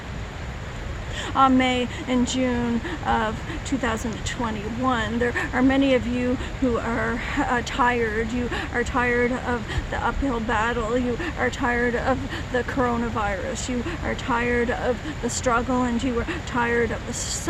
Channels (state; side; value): identical; both; correlation 1.00